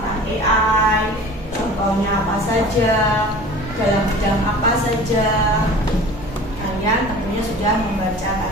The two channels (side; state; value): both; normal; correlation 0.41